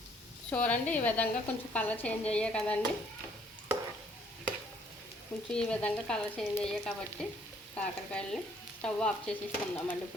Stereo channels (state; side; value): normal; both; correlation 0.63